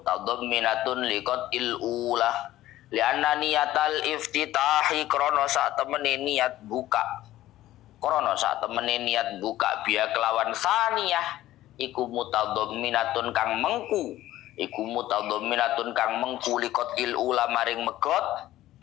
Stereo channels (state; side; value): quieter; right; 14.8 dB